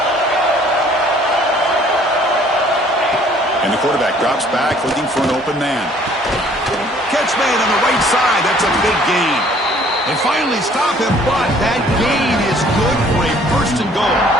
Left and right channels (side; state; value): both; normal; correlation 0.57